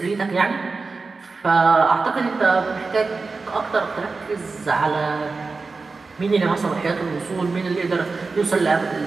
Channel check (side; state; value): left; quieter; 4.1 dB